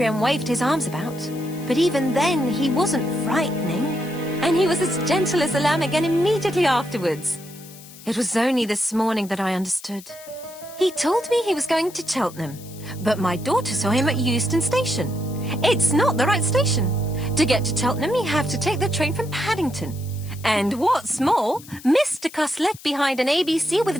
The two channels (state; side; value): noise; left; hiss, 19 dB below the sound